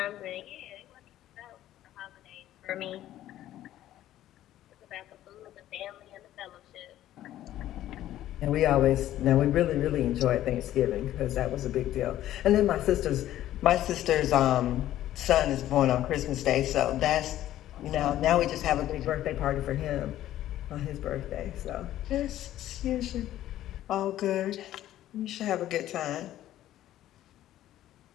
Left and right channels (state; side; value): quieter; right; 13.2 dB